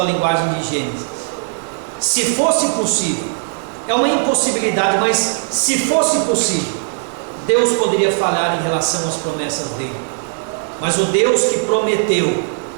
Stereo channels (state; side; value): silent; left; 60 dB below the other